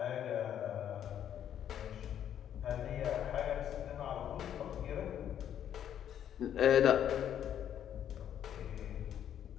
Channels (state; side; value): quieter; right; 9.9 dB